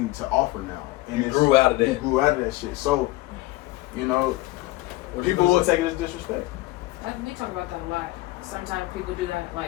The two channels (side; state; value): right; quieter; 18.8 dB